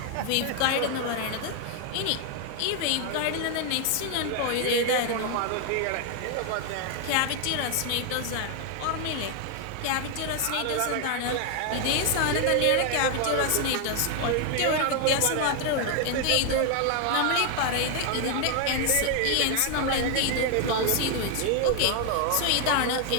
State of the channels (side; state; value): both; different; correlation 0.00